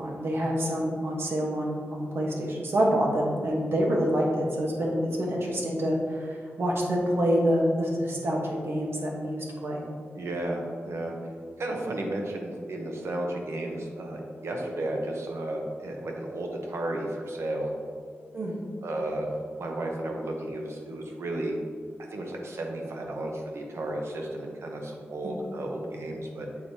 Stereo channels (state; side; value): normal; both; correlation 0.87